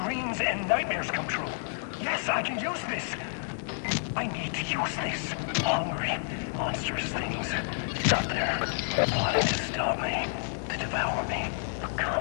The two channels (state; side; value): silent; right; 58 dB below the other